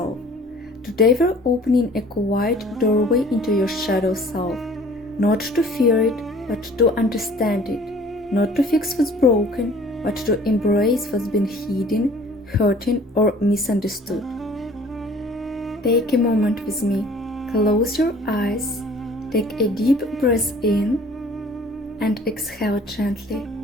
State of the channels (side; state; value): both; normal; correlation 0.51